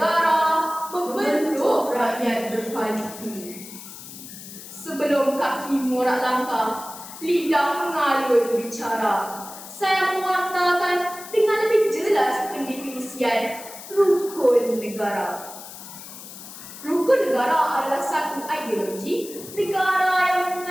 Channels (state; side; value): noise; left; hiss, 14 dB below the sound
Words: membentuk rakyat berkualiti. Sebelum kaki morak langkah, lidah mengalun bicara, saya mewartakan dengan lebih jelas pendefinisian rukun negara. Rukun negara adalah satu ideologi negara yang